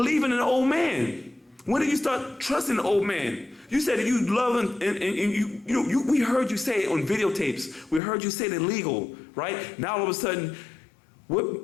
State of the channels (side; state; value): right; drops out; at 8.0 s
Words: in the old man? When did you start trusting the old man? You said that you love and we heard you say it on videotapes. We heard you say it illegal, right? Now all of a sudden,